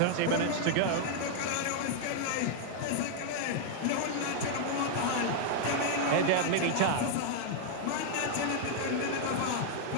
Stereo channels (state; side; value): different; both; correlation 0.00